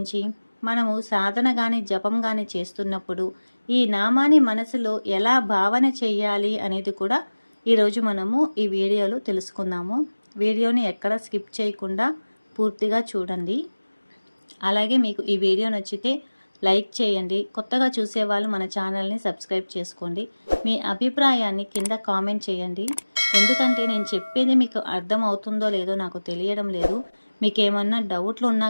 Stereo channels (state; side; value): inverted; both; correlation -1.00